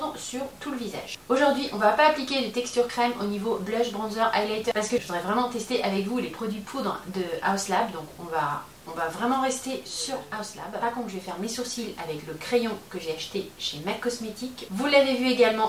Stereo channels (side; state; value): both; identical; correlation 1.00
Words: sur tout le visage. Aujourd'hui on va pas appliquer de texture crème au niveau blush, bronzer, highlighter parce que je voudrais vraiment tester avec vous les produits poudre de Haus Lab, donc on va vraiment rester sur Haus Lab. Par contre je vais faire mes sourcils avec le crayon que j'ai acheté chez MAC Cosmetics. Vous l'avez vu